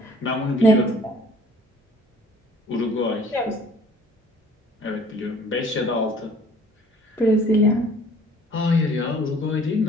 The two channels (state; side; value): normal; both; correlation 0.53